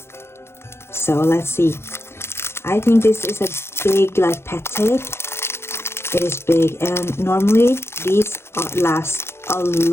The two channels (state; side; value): late; right; 0.12 ms